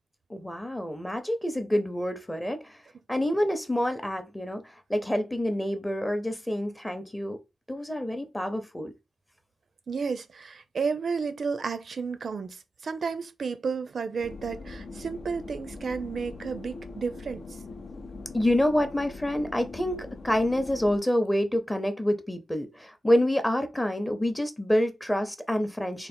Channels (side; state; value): both; normal; correlation 0.94